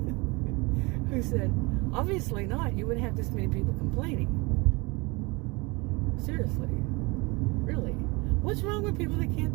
who said, obviously not. You wouldn't have this many people complaining. Seriously. Really. What's wrong with people that can't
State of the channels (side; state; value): left; quieter; 26.2 dB